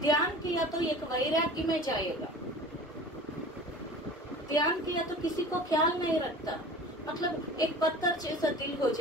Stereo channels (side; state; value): both; normal; correlation 0.40